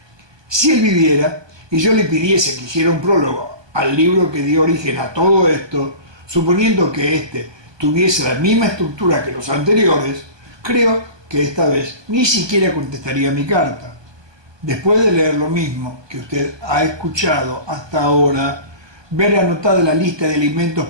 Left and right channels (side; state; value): left; late; 1.2 ms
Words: Si él viviera y yo le pidiese que hiciera un prólogo al libro que dio origen a todo esto, suponiendo que éste tuviese la misma estructura que los anteriores, creo que esta vez ni siquiera contestaría mi carta. Después de leer lo mismo que usted ha escuchado hasta ahora, ver anotada la lista de alimentos